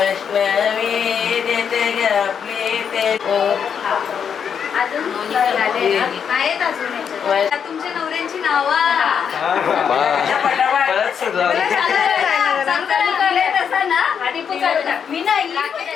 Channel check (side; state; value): right; quieter; 7.4 dB